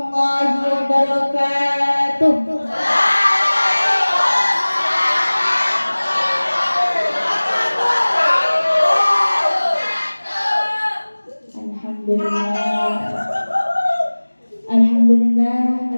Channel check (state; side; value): inverted; both; correlation -1.00